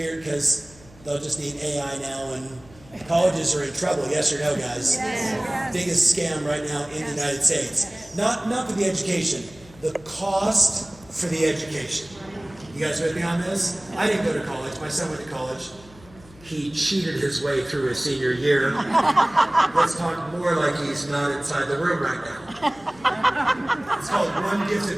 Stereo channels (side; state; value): left; noise; hum, 23 dB below the sound